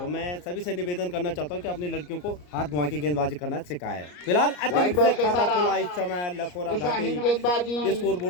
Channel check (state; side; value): late; right; 34 ms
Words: मैं सभी से निवेदन करना चाहता हूं कि अपनी लड़कियों को हाथ घुमा के गेंदबाजी करना सिखाएं। फिलहाल अतिरिक्त बॉल से के खाता सारा खुला इस समय लखोरा दिशाहीन घाटी गेंदबाजी, स्कोर